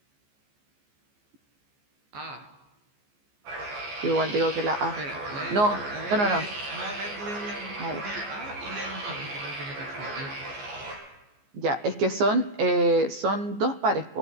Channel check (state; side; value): late; left; 14 ms